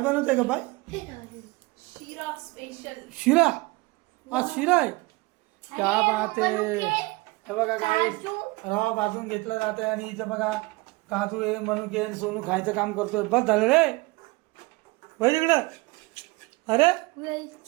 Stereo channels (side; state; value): left; quieter; 23.8 dB